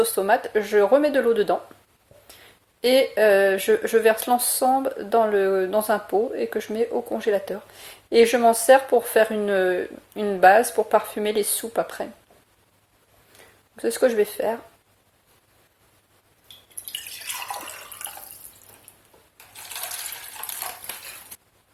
tomate, je remets de l'eau dedans. Et je verse l'ensemble dans un pot et que je mets au congélateur. Et je m'en sers pour faire une base pour parfumer les soupes après. C'est ce que je vais faire.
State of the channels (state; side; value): identical; both; correlation 1.00